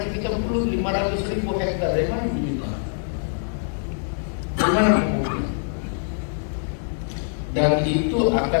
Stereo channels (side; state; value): right; silent; 55 dB below the other